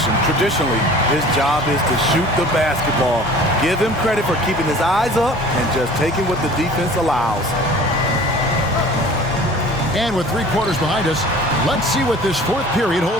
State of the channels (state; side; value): normal; both; correlation 0.45